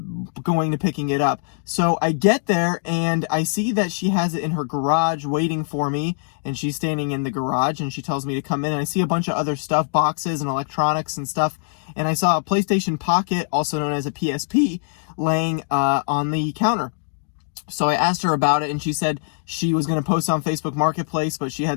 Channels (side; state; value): right; silent; digital silence